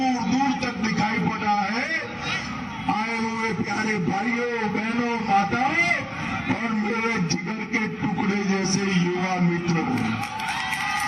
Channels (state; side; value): identical; both; correlation 1.00